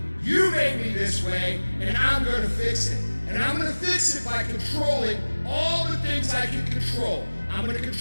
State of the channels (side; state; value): both; inverted; correlation -1.00